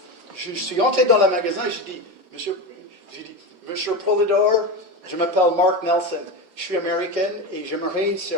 Je suis entré dans le magasin et j'ai dit, Monsieur Poulidor, je m'appelle Mark Nelson, je suis américaine et j'aimerais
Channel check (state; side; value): late; left; 5.6 ms